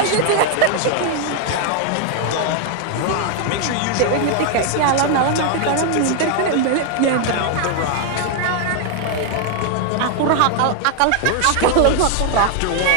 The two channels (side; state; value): both; different; correlation 0.00